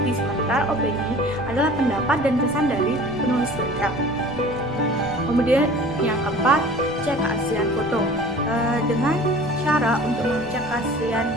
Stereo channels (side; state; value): right; noise; rumble, 23 dB below the sound